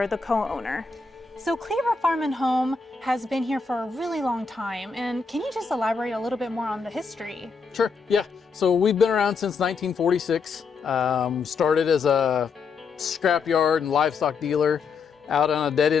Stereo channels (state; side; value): quieter; right; 5.0 dB